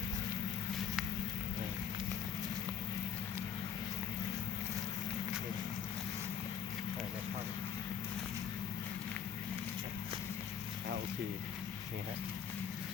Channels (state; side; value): quieter; right; 7.8 dB